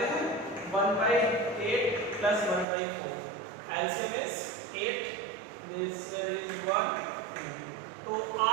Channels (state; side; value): drops out; left; at 2.7 s